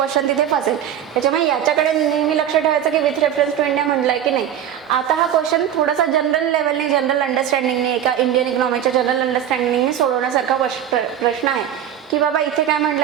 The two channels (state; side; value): quieter; left; 10.0 dB